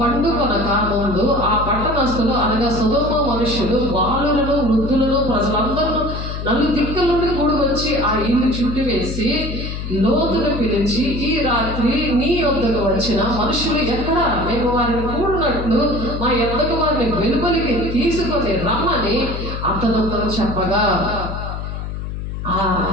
ముందు ఆ పట్టణస్థులు అనగా సొదొమ మనుషులు బాలులను వృద్ధులను ప్రజలందరూ నలుదిక్కుల నుండి కూడి వచ్చి ఆ ఇల్లు చుట్టివేసి లోతును పిలిచి, ఈ రాత్రి నీ యొద్దకు వచ్చిన మనుషులు ఎక్కడ? మేము వారిని కూడినట్లు మా యొద్దకు వారిని వెలుపలికి తీసుకొని రమ్మని అతనితో చెప్పగా,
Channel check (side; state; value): left; noise; hum, 6 dB below the sound